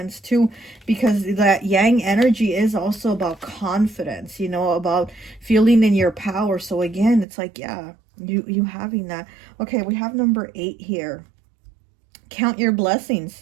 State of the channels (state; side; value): drops out; left; at 7.2 s